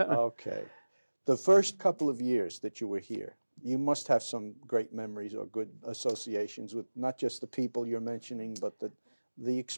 The first couple of years that you were here, you must have some great memories or good associations with not just the people you're mentioning, but the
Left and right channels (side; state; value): both; inverted; correlation -1.00